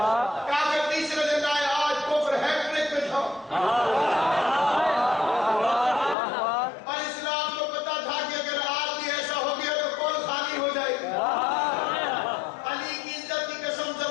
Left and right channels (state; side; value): drops out; right; at 6.2 s